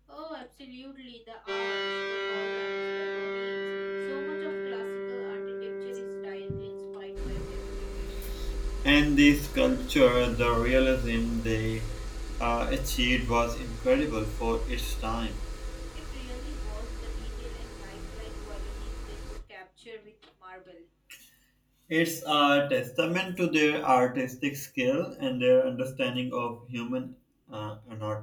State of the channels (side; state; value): both; identical; correlation 1.00